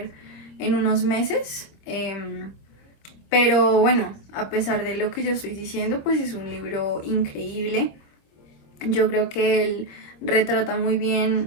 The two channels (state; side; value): late; right; 25 ms